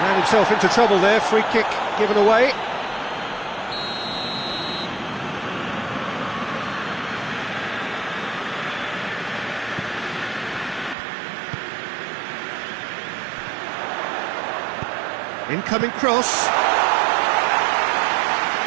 himself into trouble there. Free kick given away. Incoming cross.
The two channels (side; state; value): left; drops out; at 11.0 s